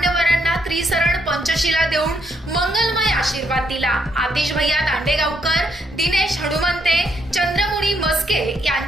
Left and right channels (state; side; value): normal; both; correlation 0.75